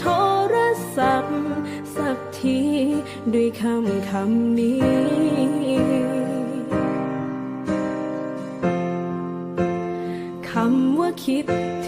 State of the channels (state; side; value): identical; both; correlation 1.00